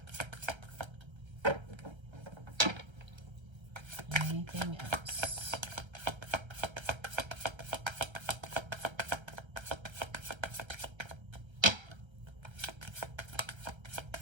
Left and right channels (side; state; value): left; late; 1.3 ms